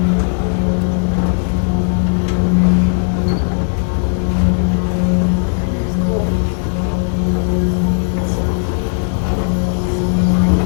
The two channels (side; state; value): right; silent; 62 dB below the other